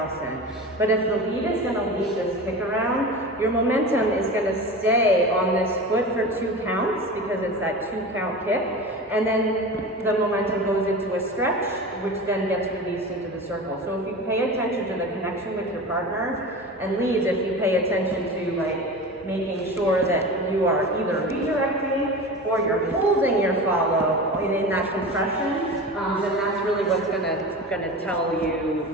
But if the lead is going to lead this kick around, your momentum is going to stay on this foot for 2 counts because it's that 2 count kick. And then the momentum goes into a stretch, which then gets released into the circle. So if you pay attention to the connection with your partner, and leads, if you pay attention to like making sure that you are either redirecting or you're holding your follow in that compression, then that's really what's gonna tell you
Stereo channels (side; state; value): both; normal; correlation 0.31